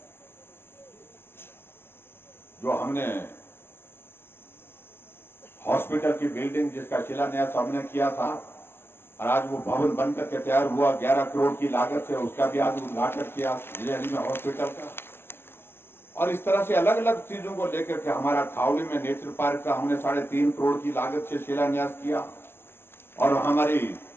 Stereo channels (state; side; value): late; right; 0.11 ms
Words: जो हमने हॉस्पिटल की बिल्डिंग जिसका शिलान्यास हमने किया था, और आज वो भवन बन करके तैयार हुआ 11 करोड़ की लागत से, उसका भी आज उद्घाटन किया जंजैहली में हॉस्पिटल का। और इस तरह से अलग अलग चीजों को लेकर के हमारा खावली में नेचर पार्क का हमने 3.5 करोड़ की लागत से शिलान्यास किया। और हमारी